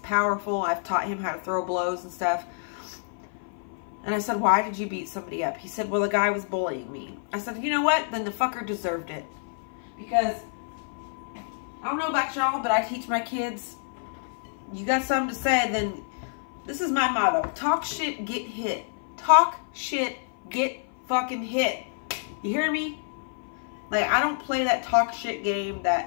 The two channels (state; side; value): silent; right; 55 dB below the other